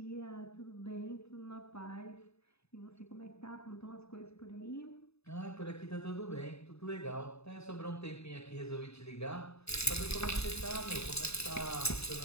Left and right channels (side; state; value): right; late; 0.79 ms